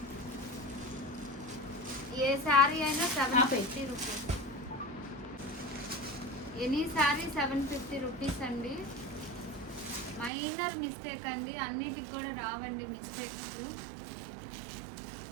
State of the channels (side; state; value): left; drops out; at 10.3 s